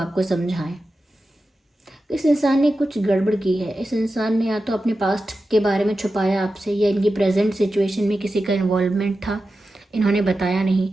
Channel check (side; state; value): both; normal; correlation 0.92